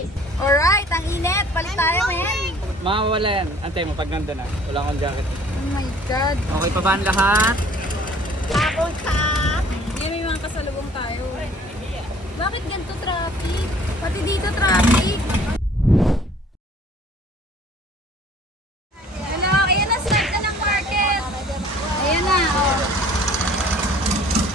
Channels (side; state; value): both; normal; correlation 0.53